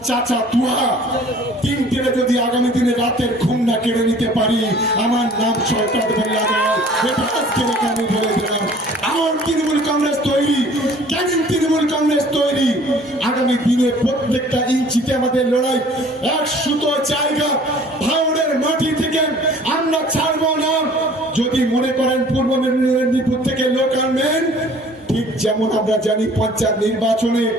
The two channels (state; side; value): normal; both; correlation 0.51